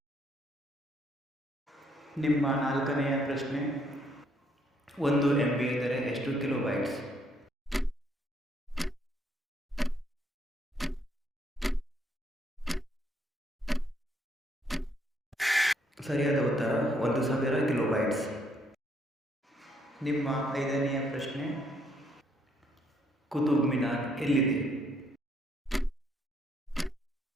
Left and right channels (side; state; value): both; normal; correlation 0.70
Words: ನಿಮ್ಮ ನಾಲ್ಕನೆಯ ಪ್ರಶ್ನೆ, 1 MB ಎಂದರೆ ಎಷ್ಟು ಕಿಲೋಬೈಟ್ಸ್? ಸರಿಯಾದ ಉತ್ತರ 1000 ಕಿಲೋಬೈಟ್ಸ್. ನಿಮ್ಮ ಐದನೆಯ ಪ್ರಶ್ನೆ, ಕುತುಬ್ ಮಿನಾರ್ ಎಲ್ಲಿದೆ?